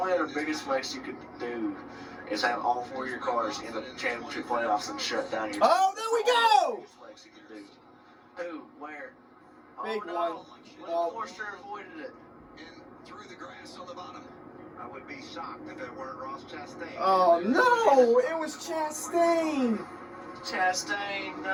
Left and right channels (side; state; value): both; identical; correlation 1.00